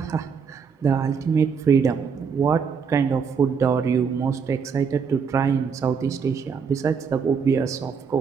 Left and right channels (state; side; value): quieter; left; 6.1 dB